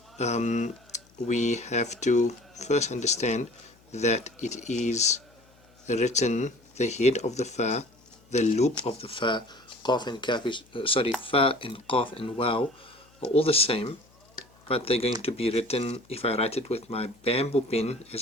we have to first understand that it is written, the head of the Fa, the loop of the Fa, Qaf and Kaf is, Fa and Qaf and Waw are all the same, but they're going to be written, if I write it with my bamboo pen,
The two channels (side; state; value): left; noise; hum, 30 dB below the sound